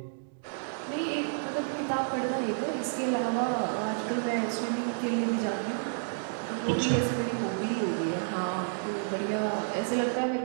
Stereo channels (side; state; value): left; silent; 58 dB below the other